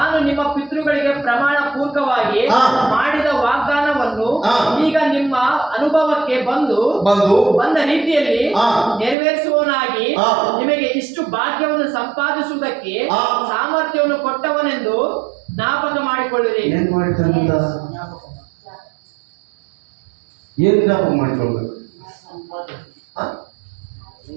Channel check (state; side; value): drops out; left; at 9.2 s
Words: ನಿಮ್ಮ ಪಿತೃಗಳಿಗೆ ಪ್ರಮಾಣ ಪೂರ್ವಕವಾಗಿ ಮಾಡಿದ ವಾಗ್ದಾನವನ್ನು ಈಗ ನಿಮ್ಮ ಅನುಭವಕ್ಕೆ ಬಂದ ರೀತಿಯಲ್ಲಿ ನೆರವೇರಿಸುವವನಾಗಿ ನಿಮಗೆ ಇಷ್ಟು ಭಾಗ್ಯವನ್ನು ಸಂಪಾದಿಸುವುದಕ್ಕೆ ಸಾಮರ್ಥ್ಯವನ್ನು ಕೊಟ್ಟವನೆಂದು ಜ್ಞಾಪಕ ಮಾಡಿಕೊಳ್ಳಿರಿ. ಏನ್ ಜ್ಞಾಪಕ ಮಾಡಿಕೊಳ್ಬೇಕು?